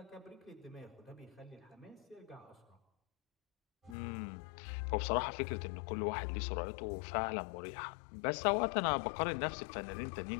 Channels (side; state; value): right; drops out; at 4.0 s